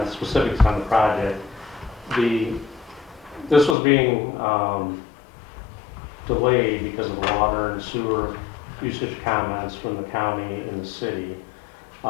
specifics on the project. This was being delayed because of the water and sewer usage comments from the county and the city.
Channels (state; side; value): drops out; right; at 3.8 s